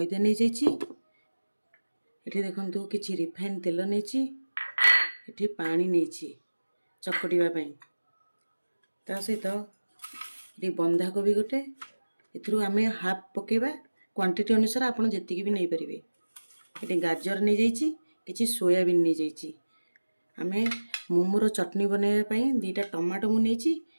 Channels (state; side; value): inverted; both; correlation -1.00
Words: ନେଇଯାଇଛି। ଏଠି ଦେଖନ୍ତୁ କିଛି ରିଫାଇନ୍ ତେଲ ନେଇଛି। ଏଠି ପାଣି ନେଇଛି ଚକଟିବା ପାଇଁ। ତା ସହିତ ଏଠି ବନ୍ଧାକୋବି ଗୋଟେ, ଏଥିରୁ ଆମେ ହାଫ୍ ପକେଇବା। କ୍ୱାଣ୍ଟିଟି ଅନୁସାରେ ଆପଣ ଯେତିକି ବି ନେଇପାରିବେ। ଏଠି ଗାଜର ନେଇଯାଇଛି, କିଛି ସୋୟାବିନ୍ ନେଇଯାଇଛି। ଆମେ ମୋମୋର ଚଟଣି ବନେଇବା ପାଇଁ 2ଟା ଟମାଟୋ ମୁଁ ନେଇଛି,